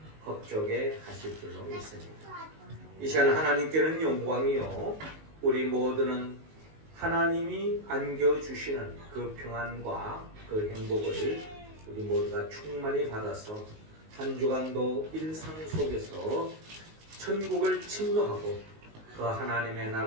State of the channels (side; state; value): left; late; 19 ms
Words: 겁족해 하실 줄로 믿습니다. 이 시간 하나님께는 영광이요, 우리 모두는 하나님이 안겨주시는 그 평안과 그 행복을 우리 모두가 충만히 받아서 한 주간도 일상 속에서 천국을 침노하고 그 하나님의